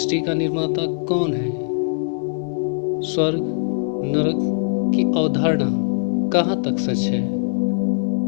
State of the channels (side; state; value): right; silent; 65 dB below the other